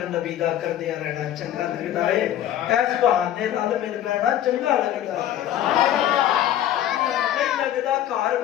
نبی دا کردیا رہنا چنگا لگدا ہے اس بہانے نال مل بیٹھنا چنگا لگدا ہے نہیں لگدا گھر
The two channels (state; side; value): quieter; right; 11.7 dB